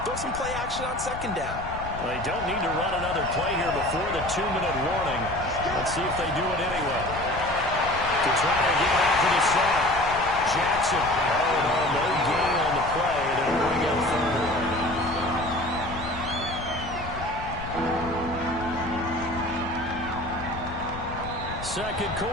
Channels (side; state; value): left; noise; rumble, 11 dB below the sound